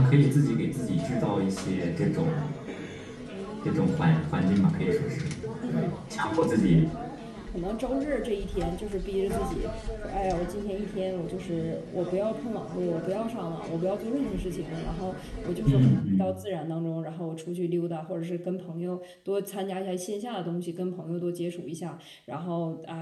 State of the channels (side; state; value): both; identical; correlation 1.00